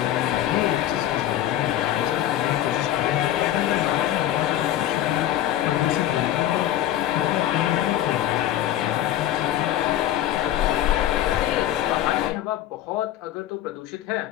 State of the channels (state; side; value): quieter; right; 12.5 dB